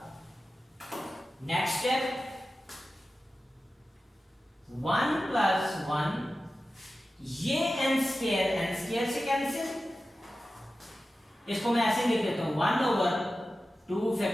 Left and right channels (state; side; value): normal; both; correlation 0.94